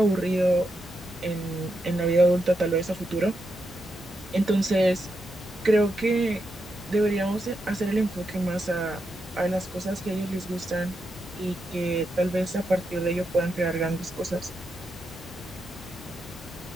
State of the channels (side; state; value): both; normal; correlation 0.85